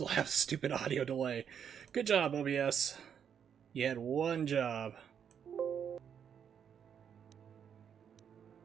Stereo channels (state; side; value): quieter; left; 8.0 dB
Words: have stupid audio delay. Good job, OBS. You had one job.